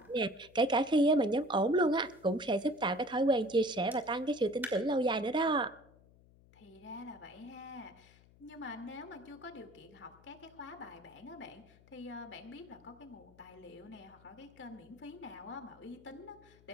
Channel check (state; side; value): noise; left; hum, 26 dB below the sound